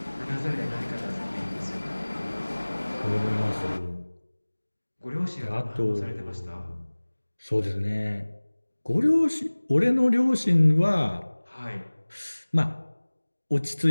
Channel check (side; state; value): both; inverted; correlation -1.00